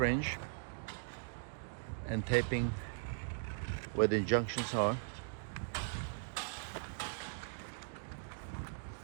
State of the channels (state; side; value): silent; left; digital silence